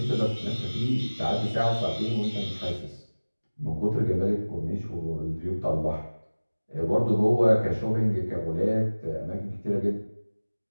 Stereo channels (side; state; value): both; inverted; correlation -1.00